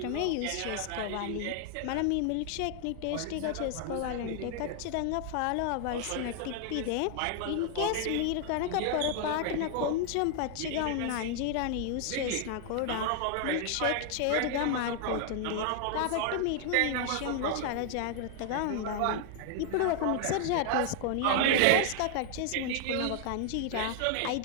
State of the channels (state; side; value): different; both; correlation 0.00